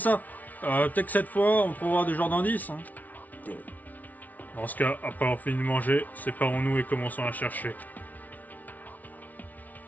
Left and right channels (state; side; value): late; right; 0.075 ms